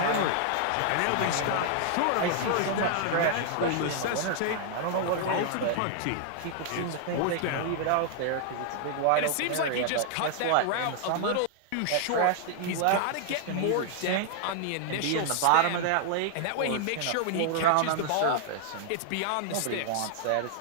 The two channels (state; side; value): different; both; correlation 0.00